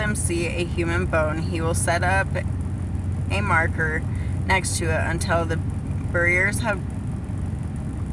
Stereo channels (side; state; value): both; identical; correlation 1.00